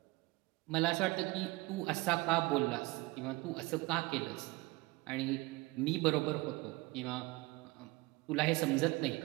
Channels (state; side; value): quieter; left; 22.9 dB